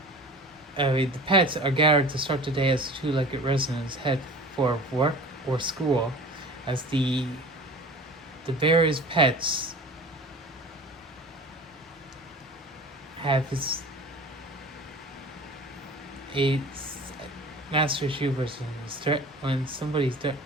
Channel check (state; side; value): normal; both; correlation 0.39